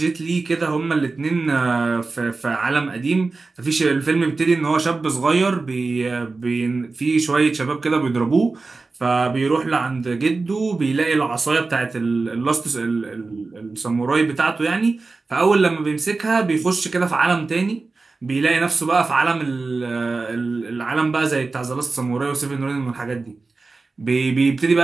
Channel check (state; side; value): quieter; left; 3.8 dB